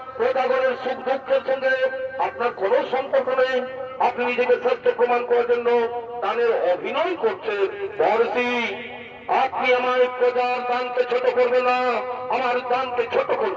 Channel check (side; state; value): both; identical; correlation 1.00